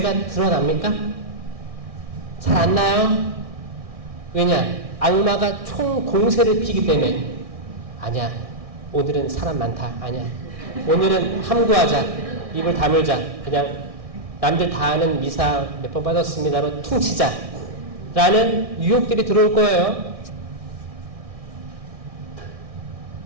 드러납니까? 잘 안 나요? 왜냐? 악마가 총 공세를 피기 때문에. 아니야, 오늘은 사람 많다. 아니야, 오늘은 함구하자, 입을 다물자, 그냥 남들 다 아는 미사 몇 번 받았습니다로 퉁치자 라는 유혹들이 들어올 거예요.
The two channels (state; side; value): late; left; 1.6 ms